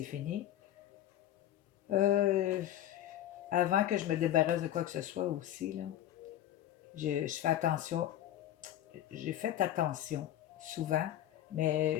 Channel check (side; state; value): right; quieter; 12.3 dB